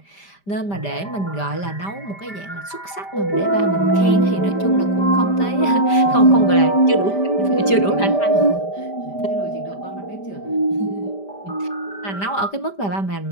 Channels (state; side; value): late; right; 5.1 ms